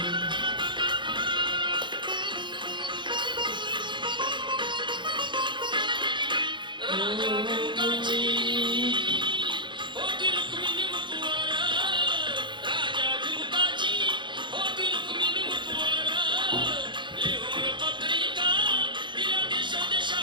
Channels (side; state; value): left; late; 0.23 ms